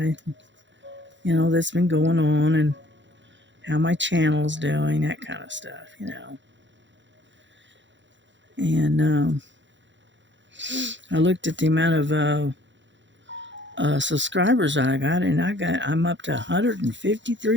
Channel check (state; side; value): late; left; 0.54 ms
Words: that's been going on and how my channel's doing, that kind of stuff. And I looked at the amount of subscribers I got, and I'm up to